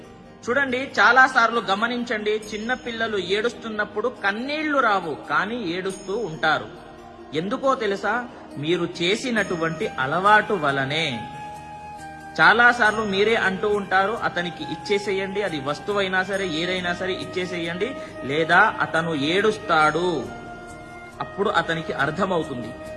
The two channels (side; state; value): both; identical; correlation 1.00